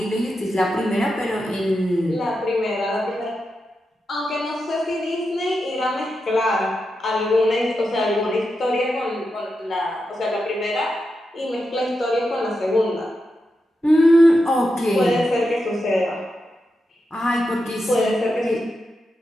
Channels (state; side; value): normal; both; correlation 0.88